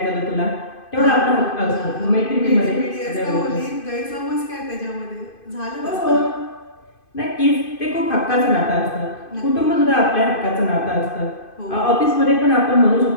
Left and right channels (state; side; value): late; right; 2.5 ms